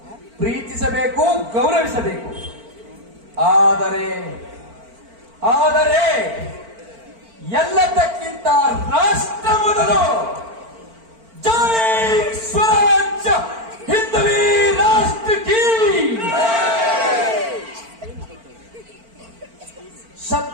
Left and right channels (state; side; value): late; left; 4.4 ms